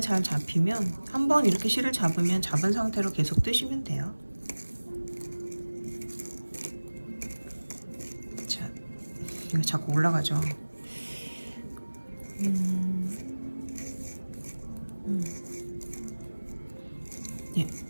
잘 잡히면 한번 이렇게 실을 잡으면 잡은 상태로 계속 뜨시면 돼요. 자, 이거 자꾸 올라가죠. 예,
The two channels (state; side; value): inverted; both; correlation -1.00